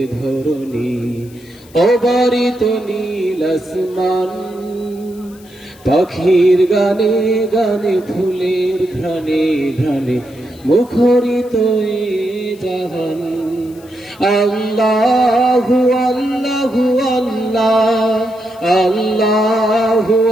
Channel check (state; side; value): noise; left; hiss, 26 dB below the sound